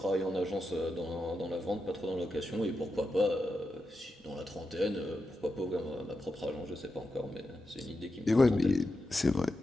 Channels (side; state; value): both; normal; correlation 0.88